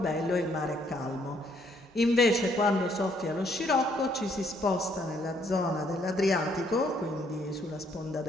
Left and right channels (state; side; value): normal; both; correlation 0.68